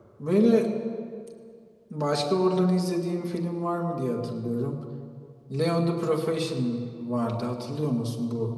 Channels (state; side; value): identical; both; correlation 1.00